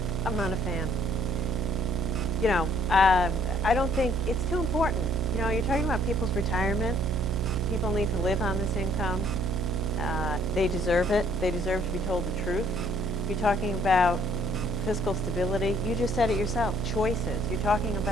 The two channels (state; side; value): noise; right; hum, 2 dB below the sound